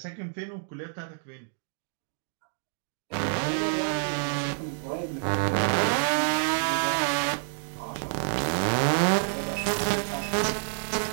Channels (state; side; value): silent; left; digital silence